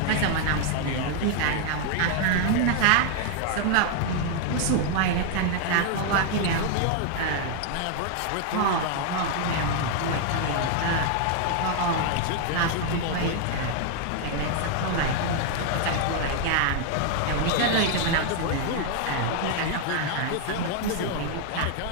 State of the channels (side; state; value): both; different; correlation 0.00